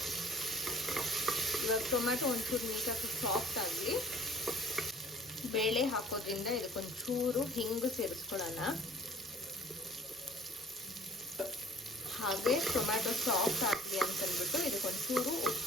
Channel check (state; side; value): normal; both; correlation 0.51